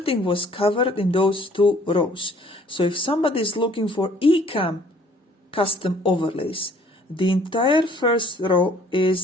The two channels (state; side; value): normal; both; correlation 0.58